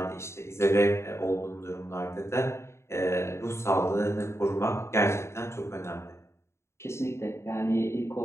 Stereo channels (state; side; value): late; right; 0.13 ms